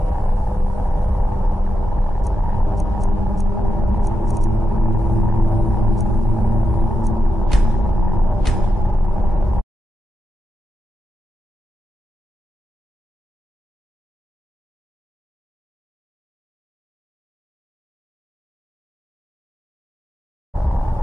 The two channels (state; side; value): normal; both; correlation 0.87